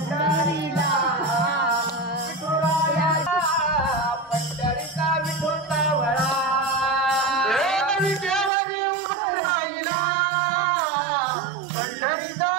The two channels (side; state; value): left; drops out; at 8.5 s